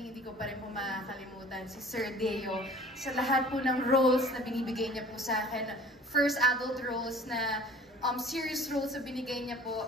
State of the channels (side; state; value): both; normal; correlation 0.47